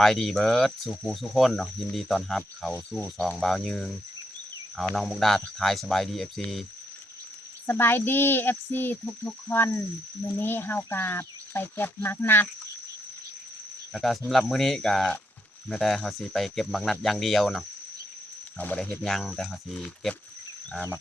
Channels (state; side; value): normal; both; correlation 0.78